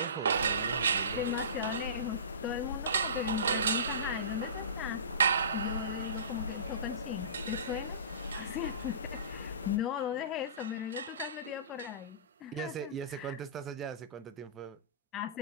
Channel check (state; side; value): inverted; both; correlation -0.33